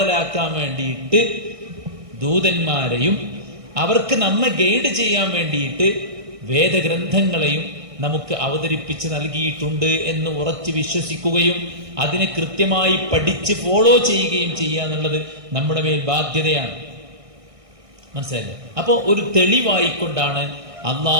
വേണ്ടിയിട്ട് ദൂതന്മാരെയും അവർക്ക് നമ്മെ ഗൈഡ് ചെയ്യാൻ വേണ്ടിയിട്ട് വേദഗ്രന്ഥങ്ങളെയും നമുക്ക് അവതരിപ്പിച്ച് നൽകിയിട്ടുണ്ട് എന്ന് ഉറച്ചു വിശ്വസിക്കുകയും അതിനെ കൃത്യമായി പഠിച്ച് ഫോളോ ചെയ്യുകയും ചെയ്യുക എന്നുള്ളത് നമ്മുടെ മേൽ ബാധ്യതയാണ്. മനസ്സിലായില്ലേ? അപ്പോ ഒരു തെളിവായിക്കൊണ്ടാണ്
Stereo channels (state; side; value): late; left; 1.6 ms